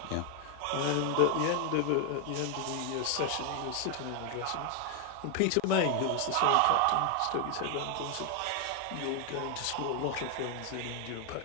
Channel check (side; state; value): both; different; correlation 0.00